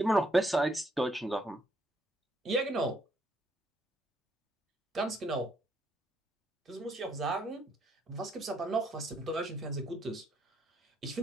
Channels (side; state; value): both; normal; correlation 0.71